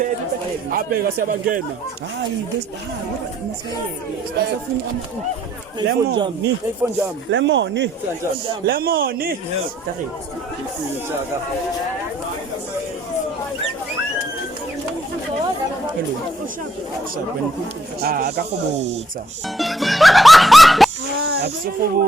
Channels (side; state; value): both; normal; correlation 0.68